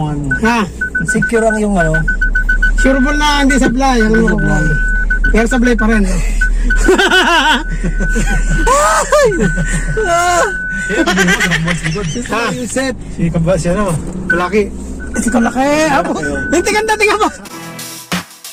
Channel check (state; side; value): identical; both; correlation 1.00